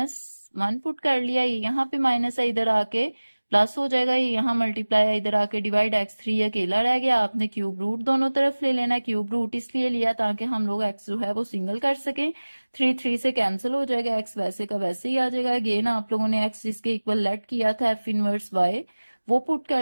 put कर लिया, ये यहाँ पे माइनस है, इधर आके प्लस हो जाएगा, ये यहाँ मल्टीप्लाई है, इधर आके डिवाइड, x3 अकेला रह गया। आपने क्यूब रूट दोनों तरफ ले लेना है। क्यूब रूट इसलिए लिया ताकि हम लोग x जो है वो सिंगल कर सकें। 3 3 से कैंसिल हो जाएगा, x वैसे का वैसे ही आ जाएगा। अगेन आप लोगों ने x जिसके इक्वल लेट किया था एफ इनवर्स y, वो पुट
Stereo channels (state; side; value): inverted; both; correlation -1.00